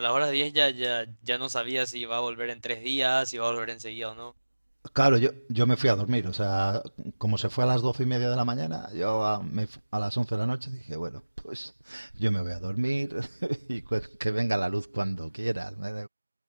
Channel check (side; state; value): both; inverted; correlation -1.00